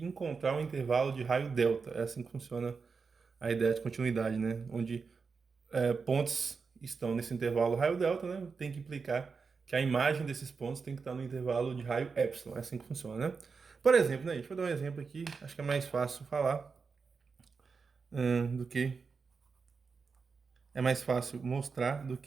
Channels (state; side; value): quieter; left; 5.1 dB